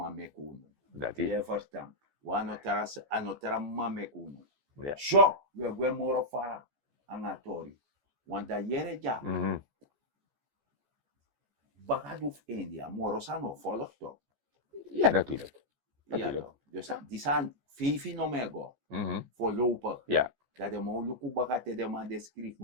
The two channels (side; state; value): left; late; 14 ms